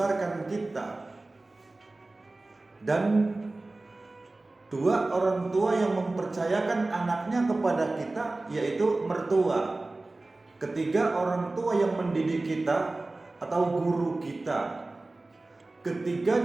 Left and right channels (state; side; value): quieter; left; 3.1 dB